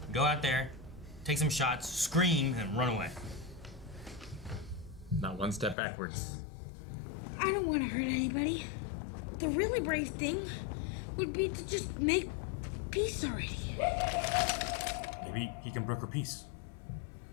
go out there, take some shots, scream, and run away. Not one step backwards. I don't want to hurt anybody. The really brave thing would be to just make peace already. Maybe he can broker peace.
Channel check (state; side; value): drops out; right; at 5.8 s